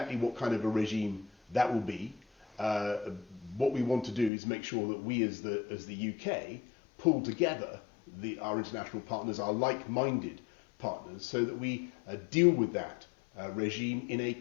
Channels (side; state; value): right; drops out; at 4.3 s